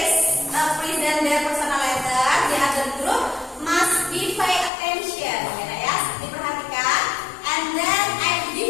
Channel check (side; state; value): right; drops out; at 4.7 s